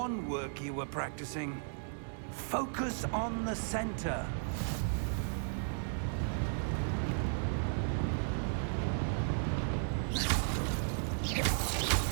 work you were practicing. Focus on the center.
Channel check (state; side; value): silent; left; digital silence